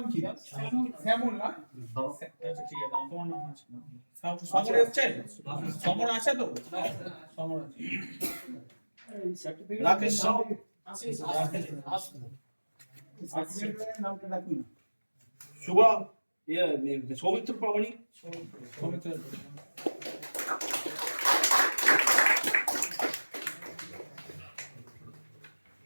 কি? শ্যামল না? আচ্ছা ঠিক আছে, তোমার নাম হচ্ছে সমর এসছে? সমর আছে তো? সমর আছে। রাকেশ সাউ, নামটা ডাকুন না। শুভা সৌমিত্র প্রামাণিক, সমিত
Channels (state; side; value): inverted; both; correlation -1.00